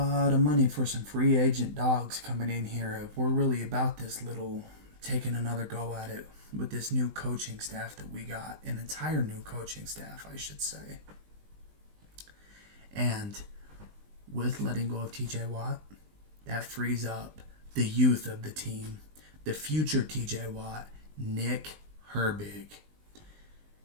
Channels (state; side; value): late; left; 19 ms